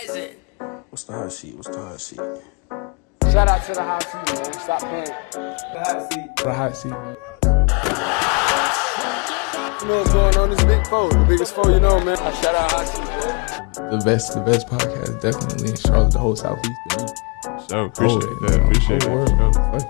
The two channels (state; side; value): quieter; right; 34.1 dB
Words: What's the hot seat? Shout out to the hot seat, man. Stop playing. The hot seat. What hot seat? You know what's going on? This big foe. The biggest foe you know, man. Shout out hot seat, man. The best podcast definitely in Charlotte, the whole Southeast. So appreciate that.